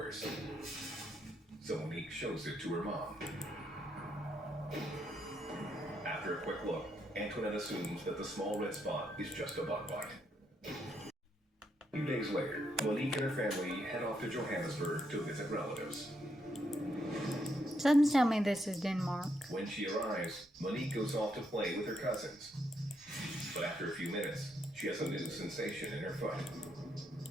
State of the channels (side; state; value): both; normal; correlation 0.77